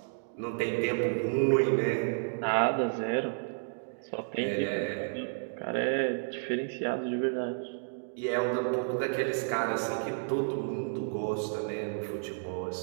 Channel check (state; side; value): silent; left; digital silence